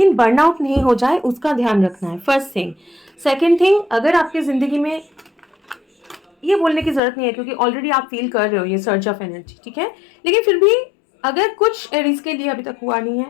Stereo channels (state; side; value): drops out; right; at 7.0 s